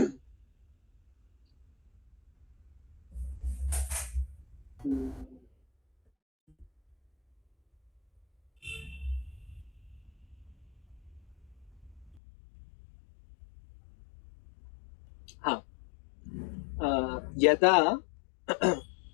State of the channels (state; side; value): drops out; right; at 12.2 s